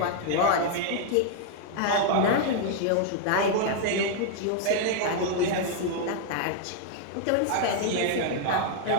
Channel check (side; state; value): both; different; correlation 0.00